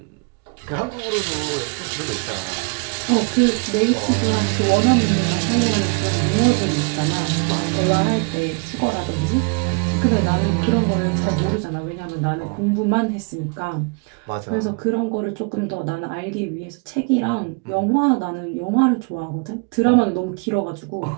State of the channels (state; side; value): quieter; left; 33.3 dB